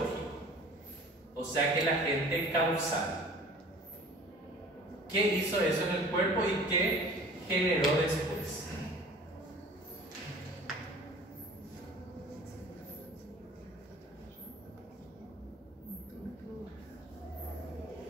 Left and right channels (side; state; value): both; normal; correlation 0.46